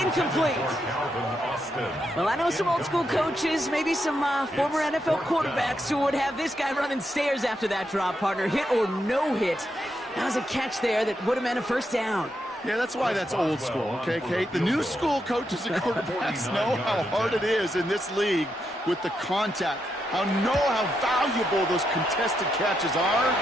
Incomplete. Well, I know some old-school coaches, maybe some former NFL quarterbacks who would have this guy running stairs after that drop, partner. Hit or no hit. That was a catch there that would have meant a first down. Yeah, that's why that's old school, okay, Kate? The new school coaches and quarterbacks know how hard it is in this league with the contact. Know how valuable those contested catches are.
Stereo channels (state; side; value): normal; both; correlation 0.82